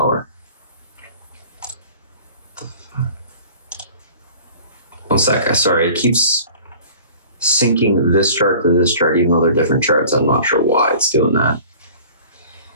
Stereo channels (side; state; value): both; inverted; correlation -0.46